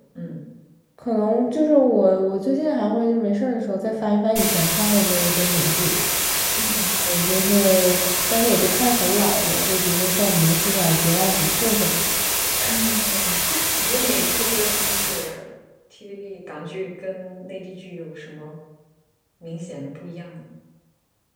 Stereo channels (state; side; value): identical; both; correlation 1.00